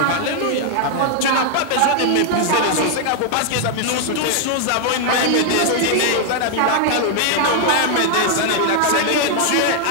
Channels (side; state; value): both; different; correlation 0.00